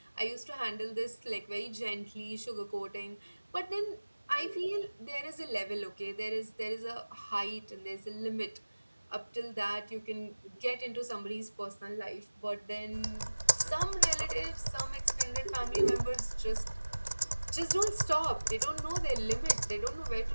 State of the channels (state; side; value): inverted; both; correlation -1.00